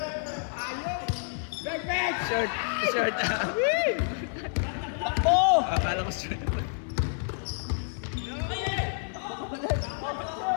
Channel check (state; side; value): silent; right; 59 dB below the other